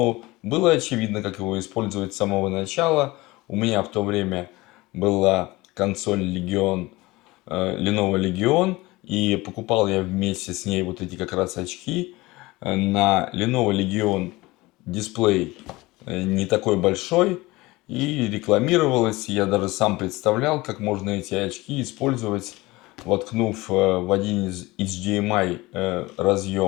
было очевидно, как его использовать с самого начала. У меня в то время была консоль Legion, Lenovo Legion, и покупал я вместе с ней вот эти как раз очки. На Lenovo Legion дисплей не такой большой, и рекламировалось. Я даже сам представлял, как можно эти очки использовать, воткнув в один из HDMI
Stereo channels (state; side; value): quieter; right; 20.9 dB